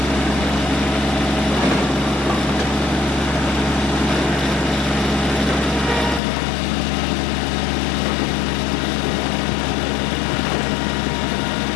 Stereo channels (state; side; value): drops out; right; at 6.2 s